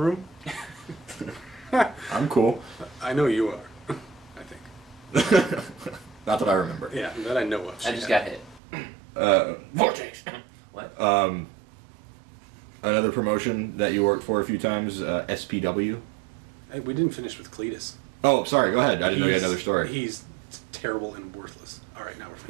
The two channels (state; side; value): drops out; left; at 8.6 s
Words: room? I'm cool. I know you are, I think. Not that I remember. Yeah, that I know of. I just got hit. Vortex. What? Another promotion that you worked for a few times, SPW. Hey, we didn't finish with Cletus. Oh, sorry. Go ahead. I didn't know you had another story. He's terrible and worthless. All right, now we're